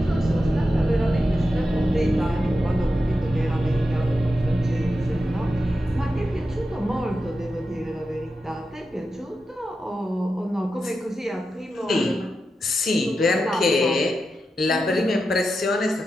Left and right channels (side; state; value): both; normal; correlation 0.89